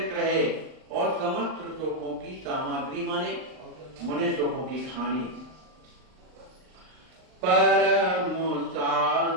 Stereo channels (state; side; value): late; left; 39 ms